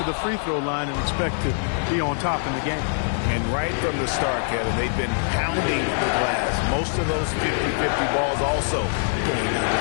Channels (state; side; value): silent; right; 63 dB below the other